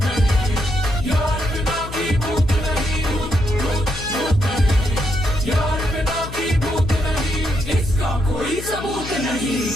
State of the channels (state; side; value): noise; left; hum, 11 dB below the sound